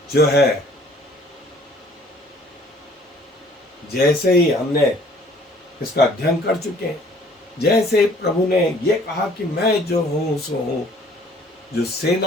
जो है जैसे ही हमने इसका अध्ययन कर चुके हैं, जैसे प्रभु ने ये कहा कि मैं जो हूं सो हूं, जो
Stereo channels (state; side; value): normal; both; correlation 0.56